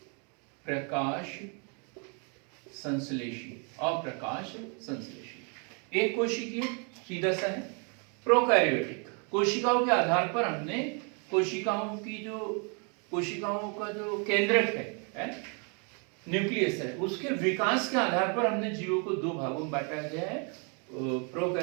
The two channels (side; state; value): left; quieter; 36.1 dB